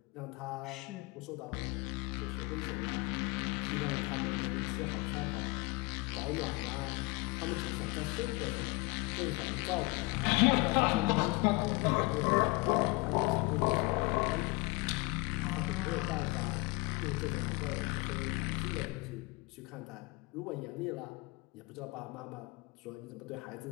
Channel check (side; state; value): right; quieter; 24.7 dB